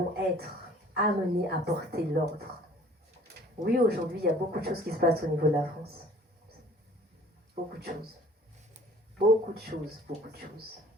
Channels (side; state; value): both; normal; correlation 0.52